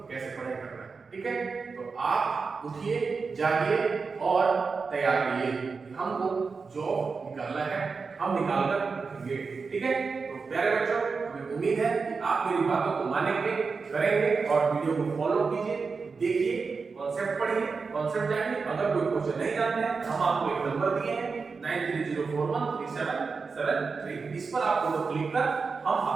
कैसे पढ़ाई करना है। ठीक है, तो आप उठिए, जागिए और तैयार रहिए कि हमको जॉब निकालना है, हम निकाल कर रखेंगे। ठीक है, तो प्यारे बच्चों हमें उम्मीद है कि आप मेरी बातों को मानेंगे, करेंगे और वीडियो को फॉलो कीजिए, देखिए, कॉन्सेप्ट पढ़िए, कॉन्सेप्ट जानिए। अगर कोई क्वेश्चन नहीं जानते हैं हम आपको एक नंबर दिए हैं 9304137773, इस पर आप दोनों क्लिक कर हम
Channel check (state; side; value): quieter; left; 4.8 dB